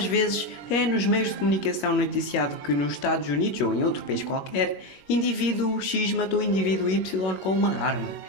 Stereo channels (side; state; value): right; late; 21 ms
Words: vezes é nos meios de comunicação noticiado que nos Estados Unidos ou em outro país qualquer, indivíduo X matou indivíduo Y com uma arma.